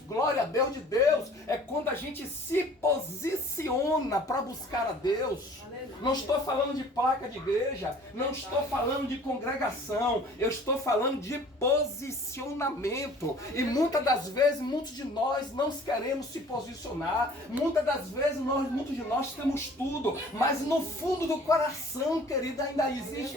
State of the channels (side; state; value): both; normal; correlation 0.50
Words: glória a Deus de Deus, é quando a gente se posiciona para buscar a Deus. Não estou falando de placa de igreja, não estou falando de congregação, eu estou falando de posicionamento. E muitas das vezes, muitos de nós não queremos se posicionar, muitas das vezes, muitos de nós temos tudo, mas no fundo do coração, querida, ainda existe